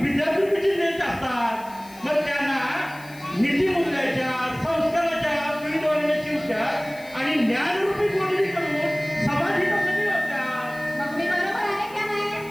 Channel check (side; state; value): left; noise; hiss, 22 dB below the sound